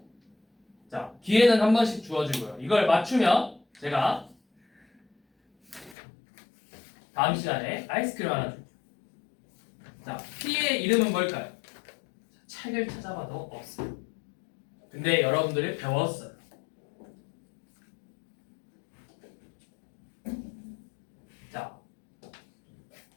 자, 기회는 한 번씩 주어지고요. 이걸 맞추면 제가 다음 시간에 아이스크림 하나 줄게요. 자, P의 이름은 뭘까요? 책을 찾아봐도 없어요. 근데 여러분들이 배웠어요. 자,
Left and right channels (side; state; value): right; drops out; at 6.0 s